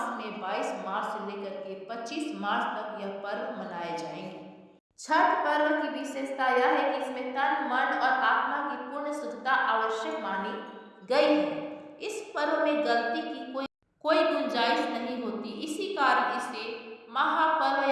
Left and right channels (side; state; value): both; identical; correlation 1.00